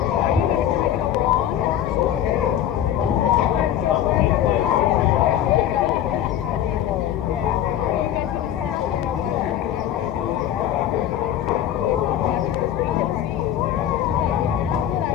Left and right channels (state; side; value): quieter; right; 10.9 dB